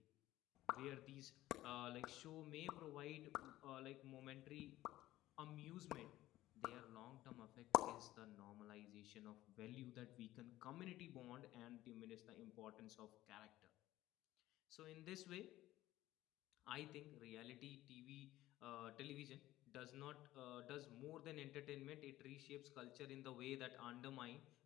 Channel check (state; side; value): quieter; right; 15.5 dB